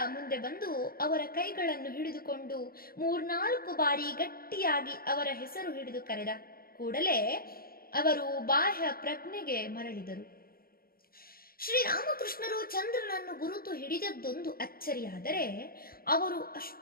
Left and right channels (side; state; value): right; late; 0.43 ms